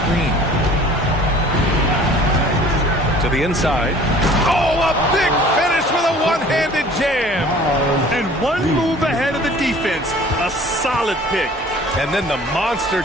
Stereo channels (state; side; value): normal; both; correlation 0.49